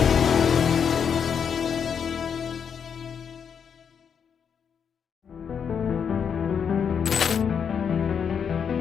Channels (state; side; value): quieter; right; 7.2 dB